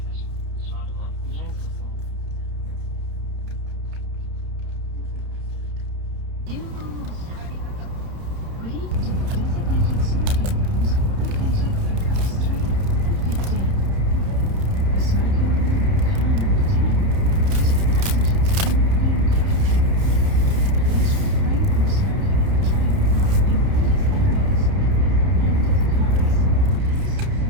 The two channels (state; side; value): late; left; 30 ms